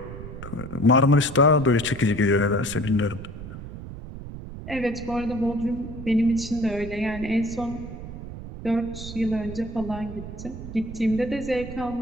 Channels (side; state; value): right; noise; rumble, 11 dB below the sound